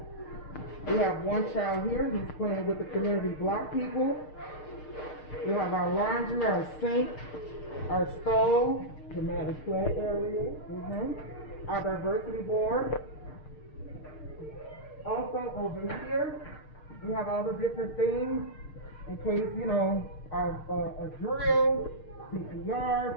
We have one child here. He's playing with the community block people. We have our laundry, our sink, our stove, Dramatic play area. Our diversity board. Also over here, we have all the different things in case, a drill,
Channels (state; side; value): late; right; 6.6 ms